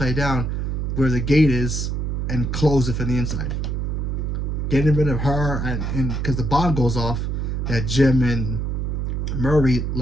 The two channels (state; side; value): noise; right; hum, 1 dB below the sound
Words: down where the gate is and close it from the inside. Getting rid of her, and because the bomb goes off that Jim and Murray